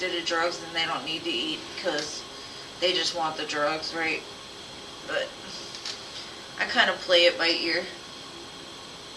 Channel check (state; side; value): identical; both; correlation 1.00